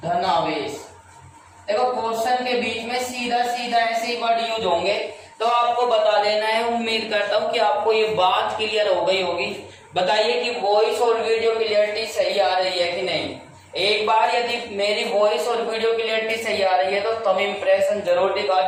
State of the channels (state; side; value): identical; both; correlation 1.00